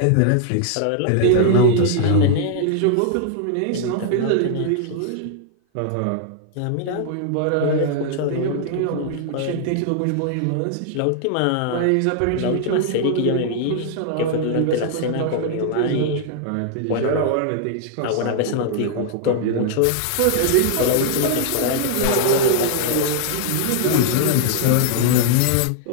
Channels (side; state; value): both; different; correlation 0.00